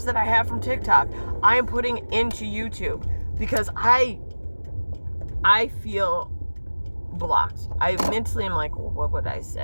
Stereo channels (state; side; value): inverted; both; correlation -1.00